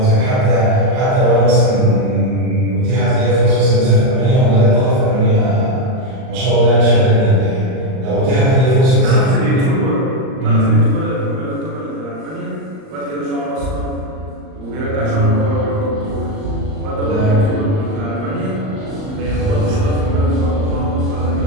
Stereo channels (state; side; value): late; left; 39 ms